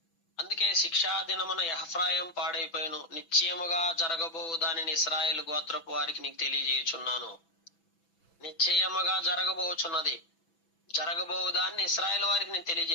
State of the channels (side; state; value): right; late; 6.0 ms